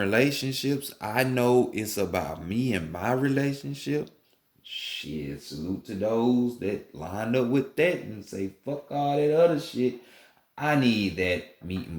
I know it's about me and my relationship. Shit, salute to those that lined up with that and say fuck all that other shit. I need that meat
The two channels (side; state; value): both; identical; correlation 1.00